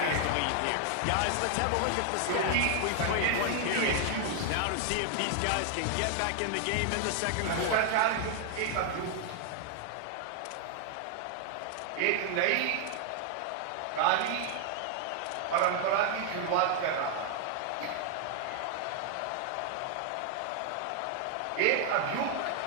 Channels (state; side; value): different; both; correlation 0.00